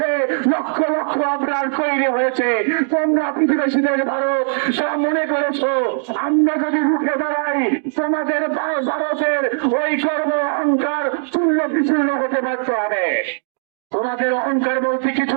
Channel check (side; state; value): left; silent; digital silence